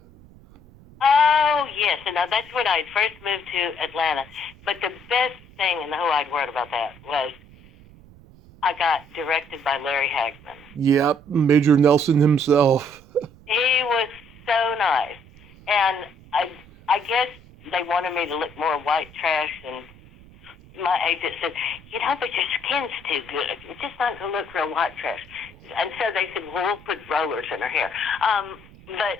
Oh yes, and now that's when I first moved to Atlanta. But the best thing in the whole wide world about that was I got directed by Larry Hagman. Yep, Major Nelson himself. He was so nice, and I guess they wanted me to look more white trash, and my agent said, you know, but your skin's too good. It's just not going to look real white trash. And so they said, well, we'll put rollers in her hair.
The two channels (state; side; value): noise; right; rumble, 23 dB below the sound